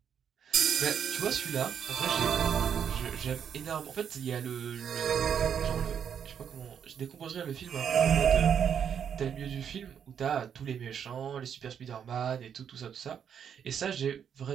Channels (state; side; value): quieter; left; 8.1 dB